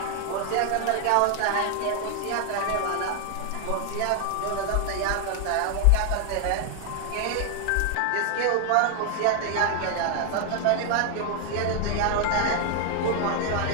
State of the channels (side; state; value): both; different; correlation 0.01